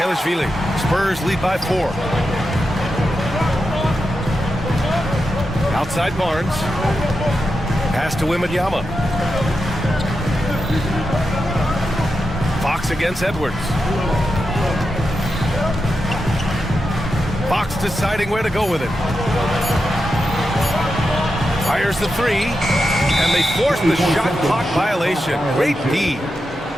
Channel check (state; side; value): normal; both; correlation 0.88